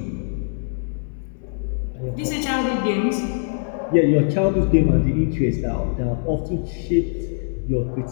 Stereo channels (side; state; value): right; silent; 64 dB below the other